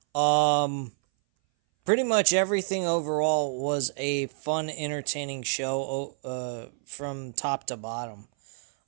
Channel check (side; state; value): left; silent; 59 dB below the other